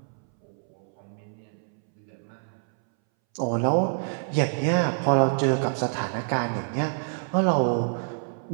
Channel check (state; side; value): silent; left; 60 dB below the other